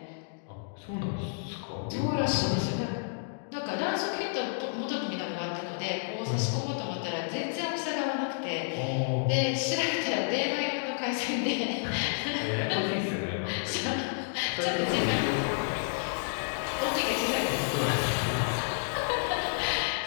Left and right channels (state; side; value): silent; right; digital silence